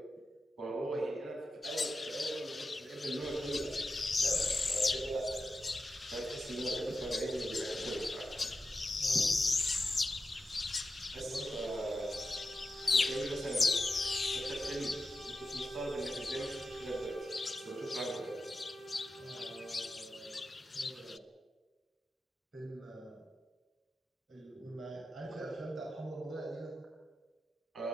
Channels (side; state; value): both; normal; correlation 0.91